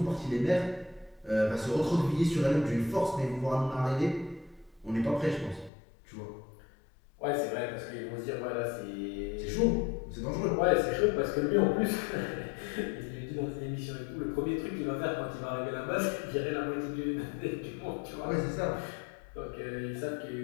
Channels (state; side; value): drops out; right; at 5.7 s